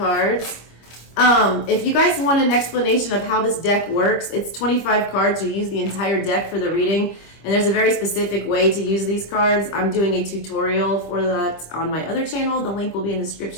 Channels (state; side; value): late; right; 25 ms